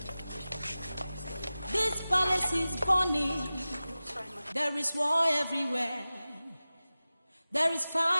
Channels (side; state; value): both; inverted; correlation -0.96